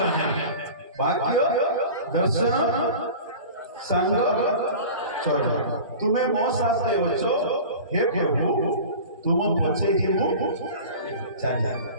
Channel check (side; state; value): both; inverted; correlation -0.37